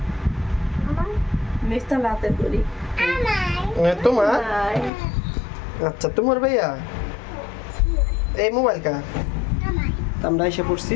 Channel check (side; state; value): right; drops out; at 4.9 s